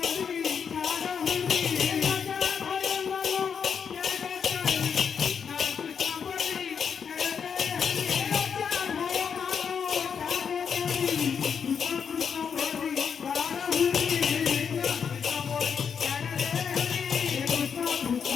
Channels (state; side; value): quieter; right; 6.9 dB